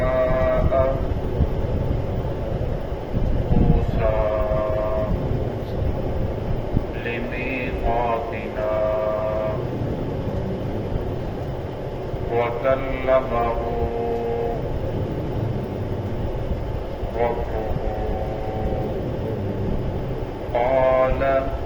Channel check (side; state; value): both; identical; correlation 1.00